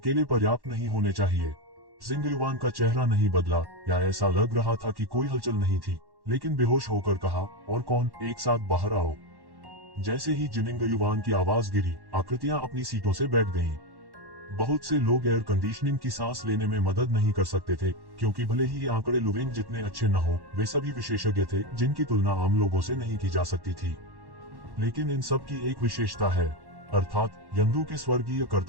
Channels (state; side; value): late; left; 1.1 ms